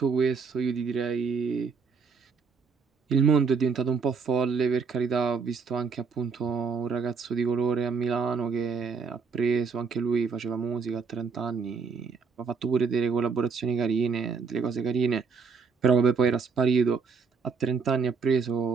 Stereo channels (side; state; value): left; quieter; 5.4 dB